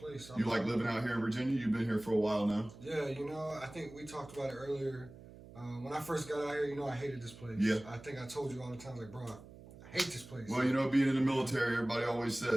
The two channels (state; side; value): noise; right; hum, 18 dB below the sound